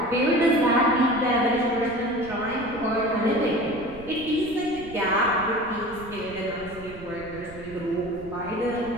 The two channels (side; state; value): right; noise; rumble, 16 dB below the sound